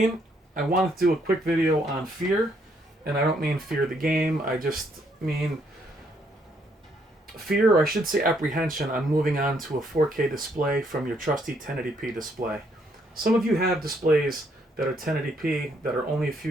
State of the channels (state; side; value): normal; both; correlation 0.71